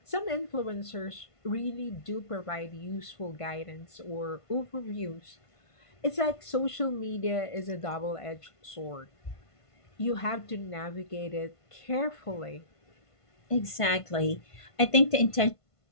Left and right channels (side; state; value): right; late; 1.5 ms